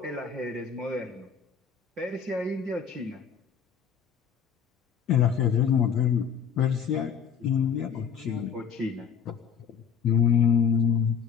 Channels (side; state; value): right; quieter; 7.1 dB